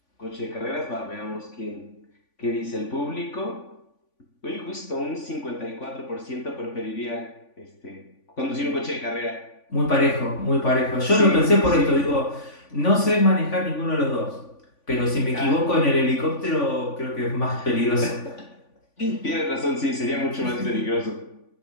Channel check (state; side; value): late; right; 3.5 ms